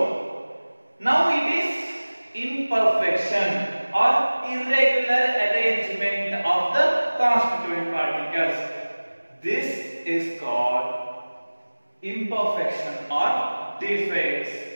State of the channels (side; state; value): both; inverted; correlation -1.00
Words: now it is imperfection or irregular arrangement of the constituent particles. This is called imperfection or defects